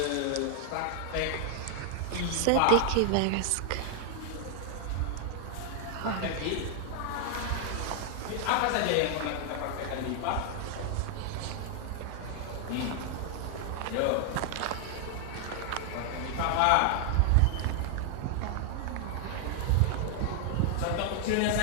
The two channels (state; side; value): different; both; correlation 0.00